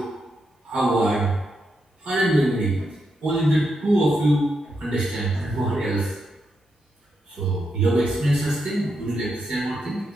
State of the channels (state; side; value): normal; both; correlation 0.83